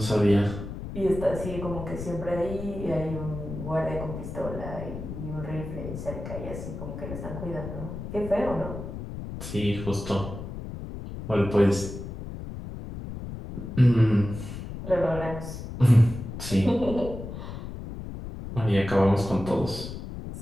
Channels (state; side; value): noise; left; rumble, 8 dB below the sound